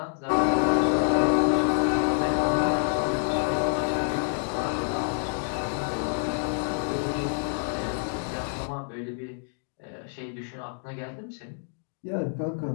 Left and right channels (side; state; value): right; silent; digital silence